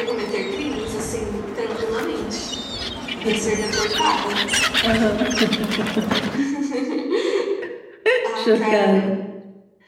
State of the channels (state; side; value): identical; both; correlation 1.00